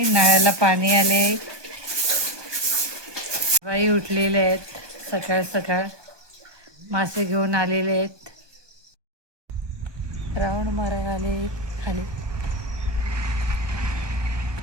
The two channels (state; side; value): late; left; 1.2 ms